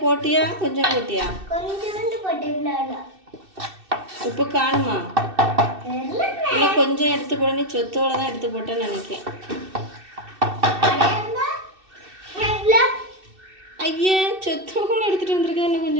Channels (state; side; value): late; left; 2.6 ms